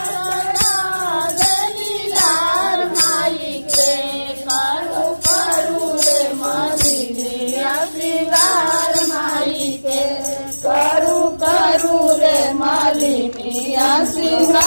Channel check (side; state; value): both; inverted; correlation -1.00